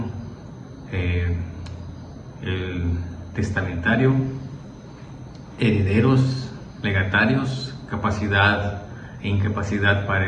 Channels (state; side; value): identical; both; correlation 1.00